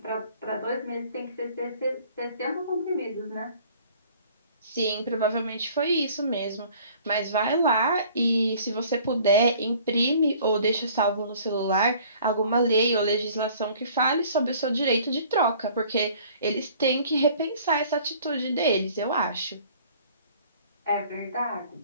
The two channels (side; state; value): both; inverted; correlation -0.53